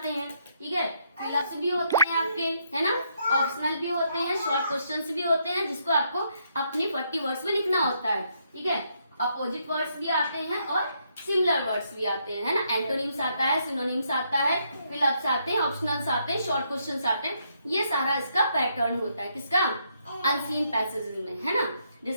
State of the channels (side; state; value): both; inverted; correlation -0.75